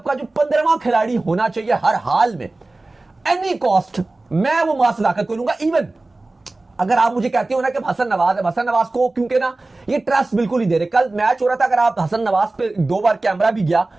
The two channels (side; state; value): left; quieter; 3.0 dB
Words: का जो 15वां खिलाड़ी होना चाहिए हर हाल में, एनी कॉस्ट, मैं वो मां सदाकत को लूंगा। इवन अगर आप मुझे कहते हो ना कि हसन नवाज है, हसन नवाज को क्योंकि ना ये ट्रस्ट बिल्कुल ही दे रहे। कल मैच हो रहा था, अगर आप हसन नवाज पे 2 बार कैमरा भी गया,